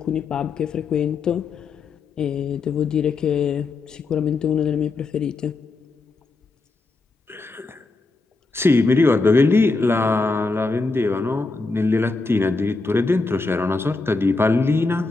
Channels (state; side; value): quieter; right; 3.7 dB